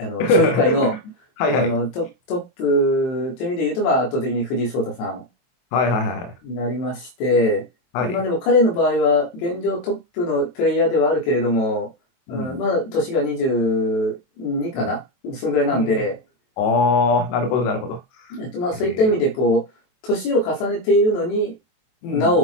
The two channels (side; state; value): right; late; 23 ms